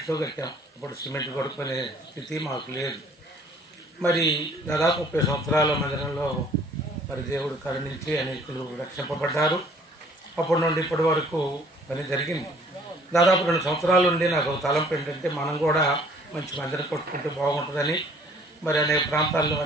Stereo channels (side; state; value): both; normal; correlation 0.56